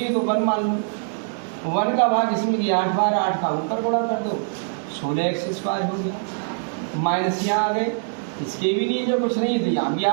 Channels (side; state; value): left; silent; 63 dB below the other